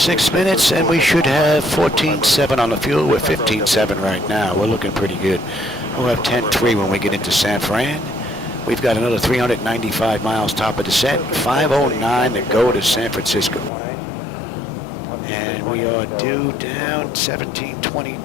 minutes, and we should have 14.7 on the fuel. We're 15.7 right now. We're looking pretty good. We'll have 10.3 when we get into San Fran. We've got another 395 miles top of descent, 5:09 to go to San Francisco. And we are due down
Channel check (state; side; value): drops out; right; at 13.7 s